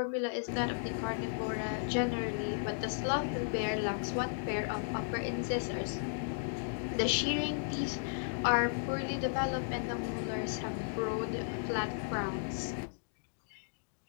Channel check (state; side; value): silent; right; digital silence